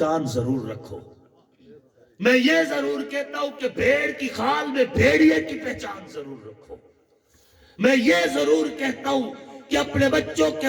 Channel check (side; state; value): both; identical; correlation 1.00